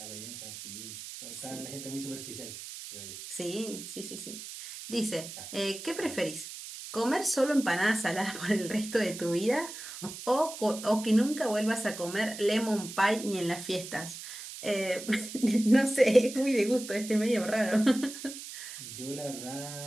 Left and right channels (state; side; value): noise; right; hiss, 11 dB below the sound